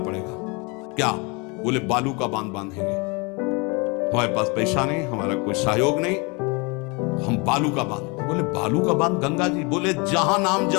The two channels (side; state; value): right; quieter; 29.6 dB